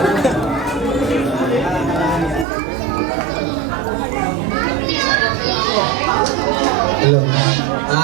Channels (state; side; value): drops out; left; at 2.5 s